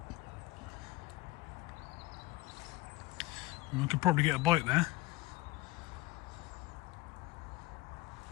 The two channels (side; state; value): right; quieter; 19.3 dB